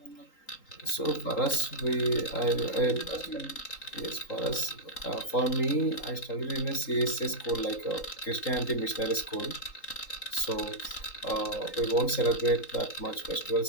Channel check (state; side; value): late; right; 3.8 ms